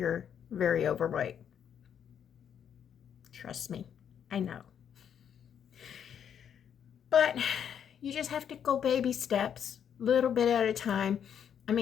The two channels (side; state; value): right; quieter; 8.6 dB